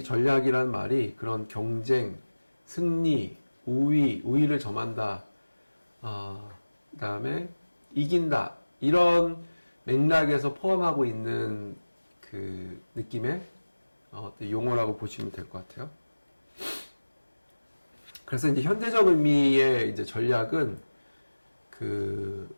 전략이란 말이 그런 경쟁, 승리, 우위를 점한다, 그 다음에 이긴다 이런 맥락에서 포함하고 있는 그 느낌의 용어라고 보시면 될 것 같아요. 그래서 이제 현대적 의미의 이제 전략은 그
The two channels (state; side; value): inverted; both; correlation -1.00